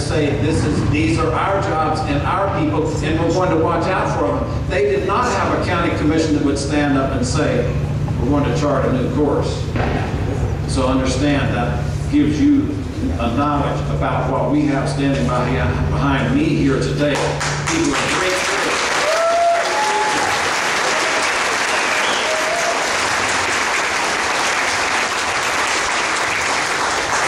these are our jobs and our people, and we're going to watch out for them. They did not have a county commission that would stand up and say, we're going to chart a new course. So understand that gives you a knowledge about what we have standing behind me here today. People are great.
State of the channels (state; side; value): identical; both; correlation 1.00